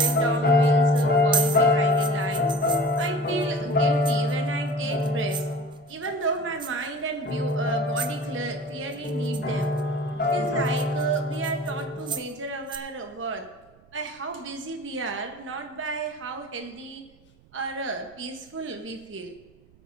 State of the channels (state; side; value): noise; right; rumble, 29 dB below the sound